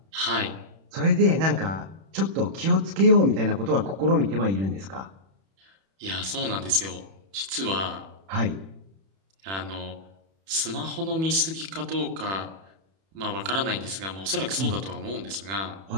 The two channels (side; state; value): left; late; 31 ms